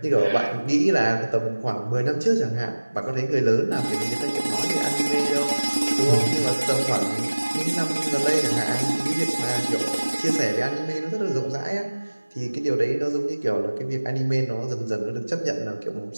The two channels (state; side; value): inverted; both; correlation -1.00